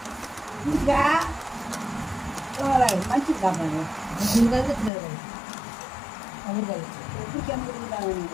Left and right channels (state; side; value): drops out; right; at 4.9 s